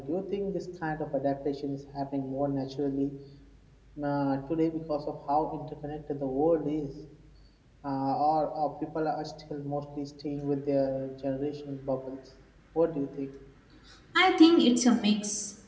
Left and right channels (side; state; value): both; identical; correlation 1.00